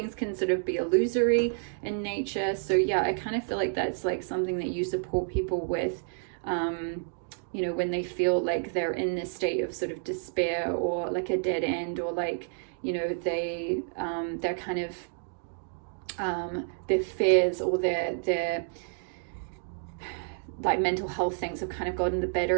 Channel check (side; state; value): left; silent; digital silence